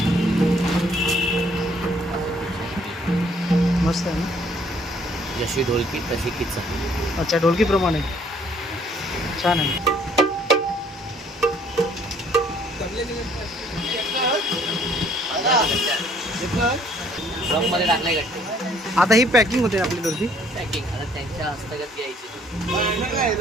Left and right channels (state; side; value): normal; both; correlation 0.62